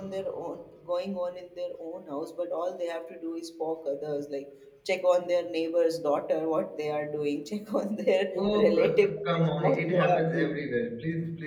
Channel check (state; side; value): identical; both; correlation 1.00